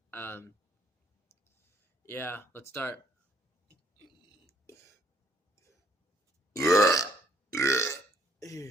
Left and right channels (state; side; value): normal; both; correlation 0.65